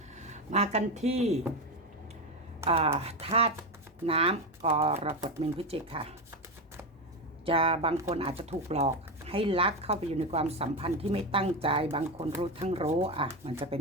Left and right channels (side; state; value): both; normal; correlation 0.14